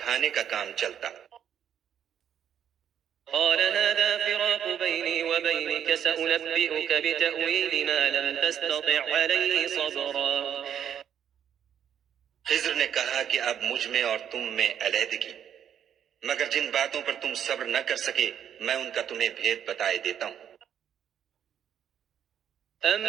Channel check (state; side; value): quieter; left; 9.1 dB